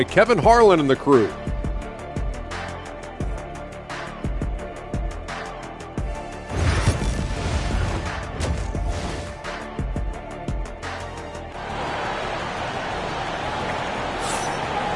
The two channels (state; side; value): identical; both; correlation 1.00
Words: Kevin Harlan and the crew.